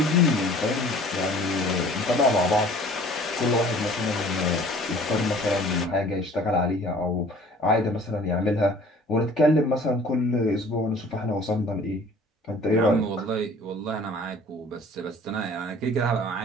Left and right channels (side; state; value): both; normal; correlation 0.50